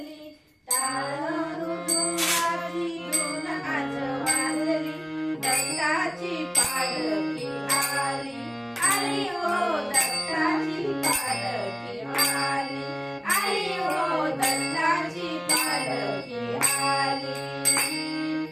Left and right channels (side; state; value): both; identical; correlation 1.00